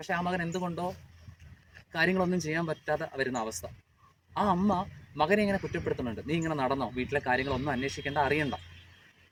ആ മകൻ എന്തുകൊണ്ടോ കാര്യങ്ങളൊന്നും ചെയ്യാൻ പറ്റാതെ വരുന്ന അവസ്ഥ. ആ അമ്മ മകനെ ഇങ്ങനെ കുറ്റപ്പെടുത്തുന്നുണ്ട്. നീ ഇങ്ങനെ നടന്നോ, വീട്ടിലെ കാര്യങ്ങളൊന്നും അന്വേഷിക്കേണ്ട, അറിയണ്ട.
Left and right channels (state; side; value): identical; both; correlation 1.00